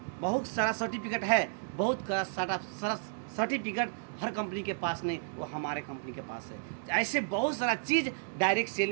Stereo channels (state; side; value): silent; left; digital silence